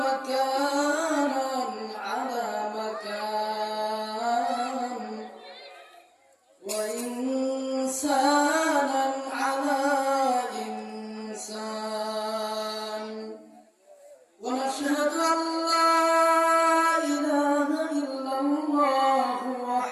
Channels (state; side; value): identical; both; correlation 1.00